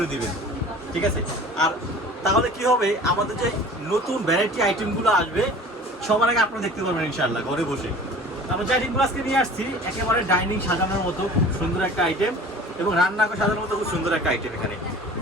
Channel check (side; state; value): both; normal; correlation 0.43